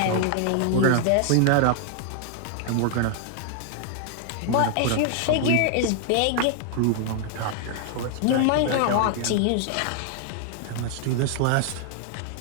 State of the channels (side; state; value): both; different; correlation 0.00